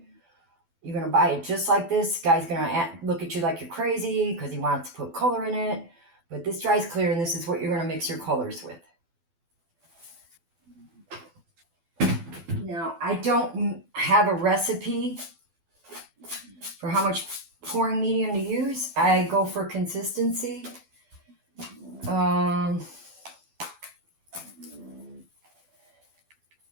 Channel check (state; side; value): late; left; 12 ms